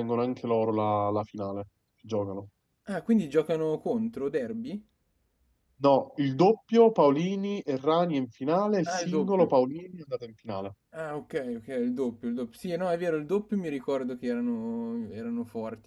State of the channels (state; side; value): identical; both; correlation 1.00